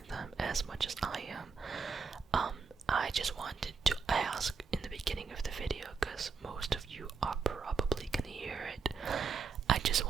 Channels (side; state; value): left; quieter; 5.3 dB